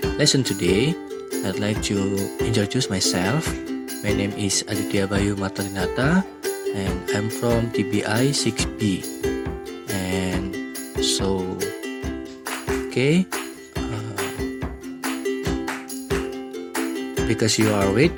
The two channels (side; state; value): both; identical; correlation 1.00